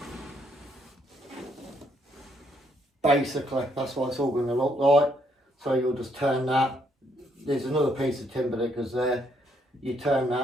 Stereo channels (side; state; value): both; normal; correlation 0.72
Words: basically that's what it's all going to look like. So you'll just turn that. There's another piece of timber that goes there. You turn